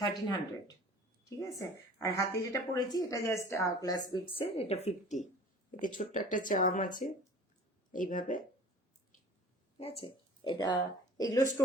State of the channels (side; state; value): both; normal; correlation 0.44